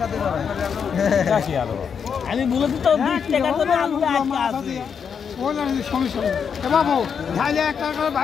আমি বলেছি তো 20 টাকা করে আলু আটকা আছে। বাবু ঢাইলে 1 টাকা করে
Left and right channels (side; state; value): right; quieter; 6.8 dB